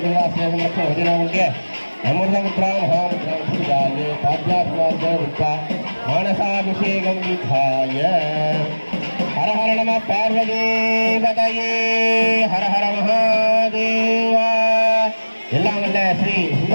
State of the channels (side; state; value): both; inverted; correlation -1.00